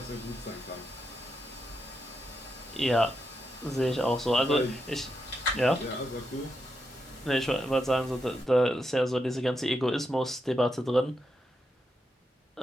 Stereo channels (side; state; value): both; normal; correlation 0.84